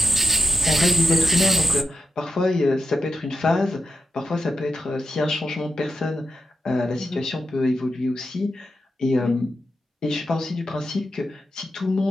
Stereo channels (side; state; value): both; normal; correlation 0.87